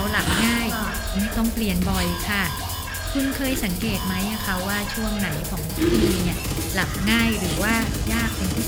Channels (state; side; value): identical; both; correlation 1.00